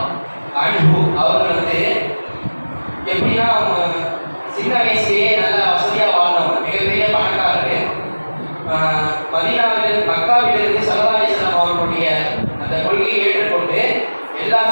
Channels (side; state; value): both; inverted; correlation -1.00